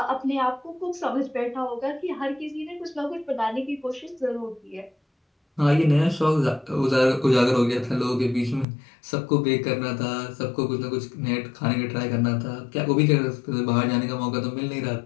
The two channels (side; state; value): right; drops out; at 8.7 s